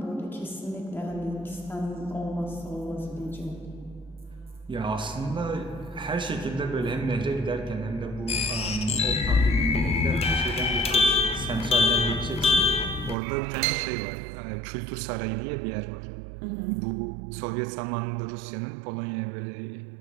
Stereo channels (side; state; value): left; drops out; at 13.2 s